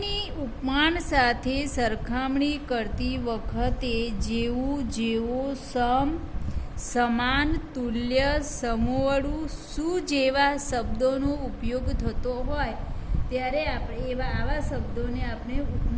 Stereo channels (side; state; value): both; identical; correlation 1.00